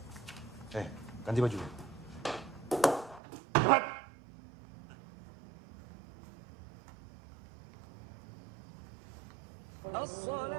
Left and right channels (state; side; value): drops out; left; at 3.2 s